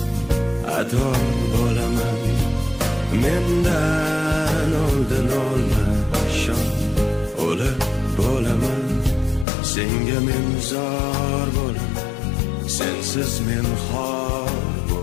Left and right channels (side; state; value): right; drops out; at 9.5 s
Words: ado bo'laman. Mendan oldin olma shom, o'lib bo'laman. Senga men zor bo'laman, sensiz men xor